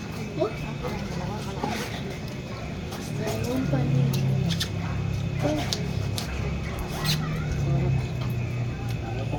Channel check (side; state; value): both; identical; correlation 1.00